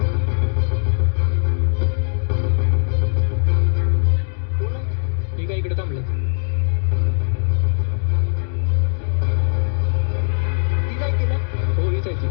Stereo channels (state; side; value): silent; right; digital silence